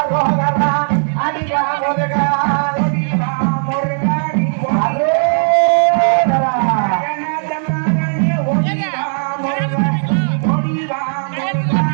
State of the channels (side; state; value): left; silent; digital silence